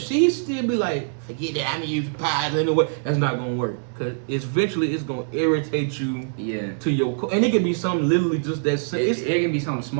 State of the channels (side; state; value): left; silent; digital silence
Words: she still be like, forget that, I'm gonna use pies anyway, that's not gonna work. Cause it's gonna irritate you to your core. And it can be something literally just that it can be something